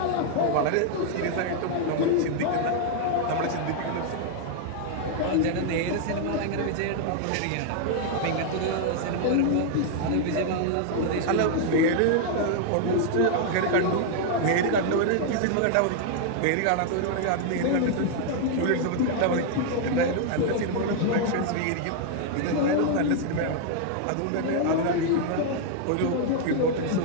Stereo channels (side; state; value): both; different; correlation 0.00